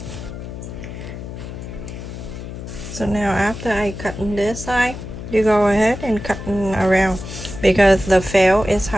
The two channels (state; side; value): noise; left; hum, 10 dB below the sound